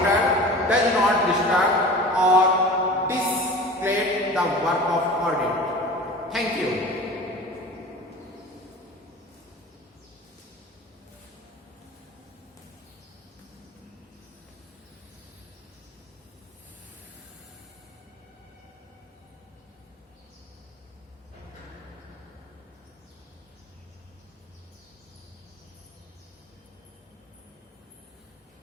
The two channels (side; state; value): both; normal; correlation 0.37